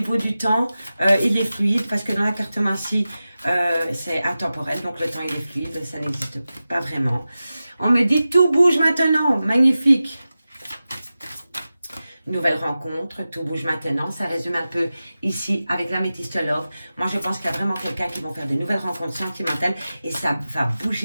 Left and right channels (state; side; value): inverted; both; correlation -0.94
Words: du temps, il est fluide parce que dans la cartomancie, c'est intemporel. Donc, le temps, il est fluide. Ça n'existe pas vraiment. On me dit tout bouge maintenant. Magnifique. Nouvelle rencontre, tout bouge maintenant. Ça résume un peu ici avec l'Améthyste Love. Moi, je pense qu'il y a vraiment quelqu'un qui va faire de nouvelles rencontres sentimentales et ça va